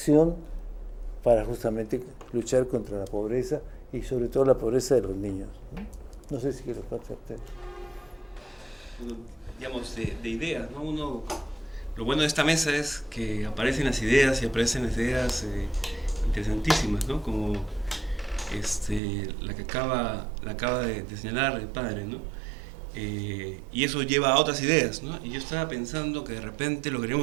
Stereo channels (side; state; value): left; drops out; at 19.0 s